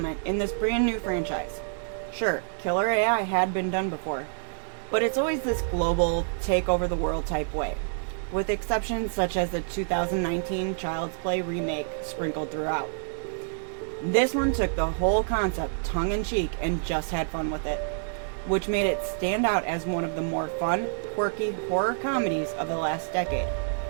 in this brand new franchise. Sure, killer AI had been done before, but it's always this global, take over the world type way, with exceptions such as the 2019 Child's Play remake sprinkled throughout. This one took the whole concept tongue-in-cheek and just had fun with it, which made it stand out as one of the more fun, quirky horror comedies of the last decade.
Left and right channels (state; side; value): silent; left; 60 dB below the other